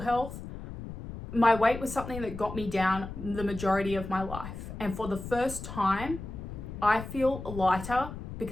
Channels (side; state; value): left; noise; rumble, 10 dB below the sound